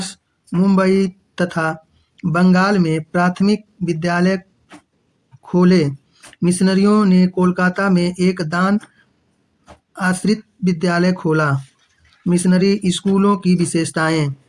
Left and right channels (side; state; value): both; identical; correlation 1.00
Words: मुंबई तथा बंगाल में प्राथमिक विद्यालय खोले। मिशनरियों ने कोलकाता में एक दान आश्रित विद्यालय खोला। मिशनरी स्कूलों की विशेषताएं।